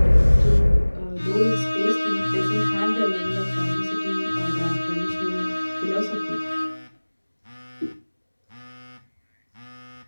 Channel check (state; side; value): inverted; both; correlation -1.00